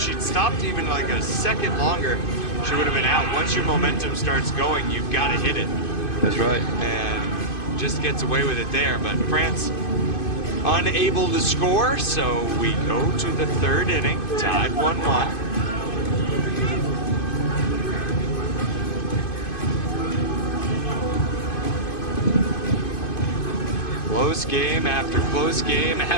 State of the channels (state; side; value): late; right; 2.5 ms